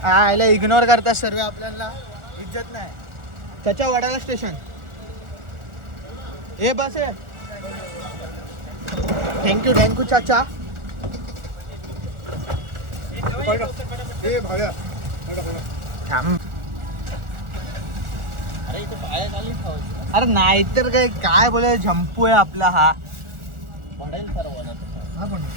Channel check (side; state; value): left; late; 1.4 ms